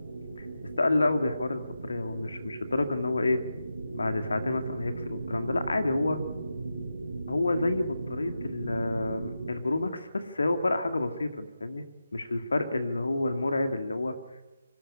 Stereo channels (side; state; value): both; inverted; correlation -0.90